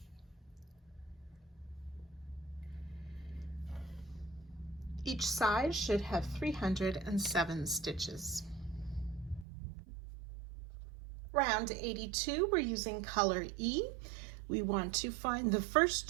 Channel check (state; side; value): drops out; left; at 9.5 s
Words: Each side should have 307 stitches. Round 82, we're using color E. We want to find the first